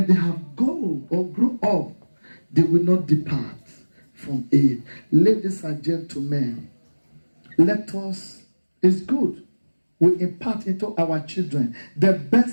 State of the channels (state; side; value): inverted; both; correlation -1.00